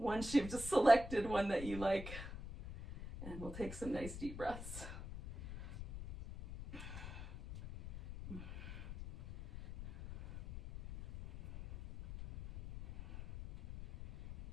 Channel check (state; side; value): noise; left; rumble, 10 dB below the sound